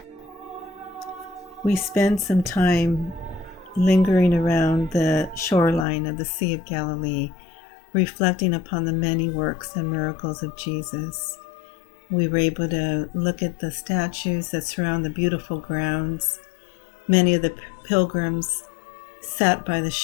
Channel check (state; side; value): drops out; right; at 5.9 s